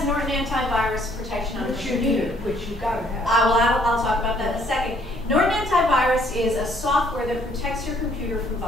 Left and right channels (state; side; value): noise; right; rumble, 17 dB below the sound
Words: Norton antivirus protection on her computer. Which you gotta have. I'll talk about that in a second. Norton antivirus is a software that protects your computer from